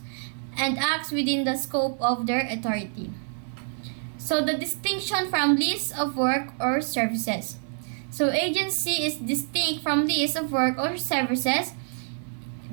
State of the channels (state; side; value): silent; left; 60 dB below the other